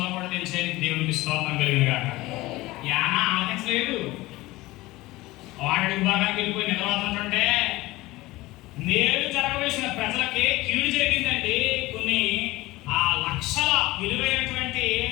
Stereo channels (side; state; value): right; quieter; 19.3 dB